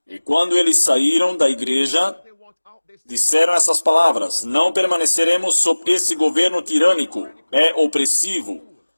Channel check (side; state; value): both; inverted; correlation -1.00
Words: E quando eles saíram da igreja, disseram essas palavras: não permaneceremos sob esse governo tirânico, é opressivo.